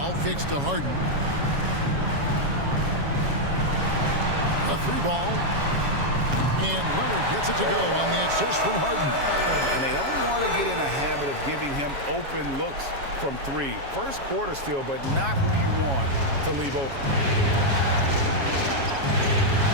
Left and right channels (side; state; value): left; late; 7.3 ms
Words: kicks to Harden. A 3 ball. And Leonard gets it to go on the assist from Harden. And they don't want to get in a habit of giving him open looks from 3. First quarter still, but not who you want to leave open.